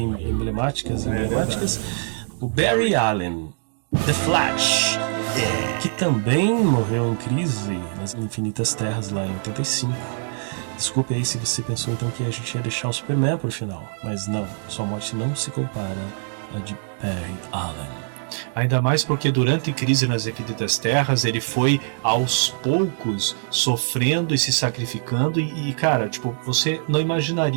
emblemáticas. O Barry Allen, The Flash, que também morreu em crise nas Infinitas Terras lá em 85. Desculpe aí se você pensou então que a gente ia deixar o Superman por final, mas não, sua morte não se compara à de Barry Allen. Ainda mais porque durante a crise nas Infinitas Terras ele foi aos poucos sofrendo e se sacrificando e cara, você não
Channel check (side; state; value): left; silent; digital silence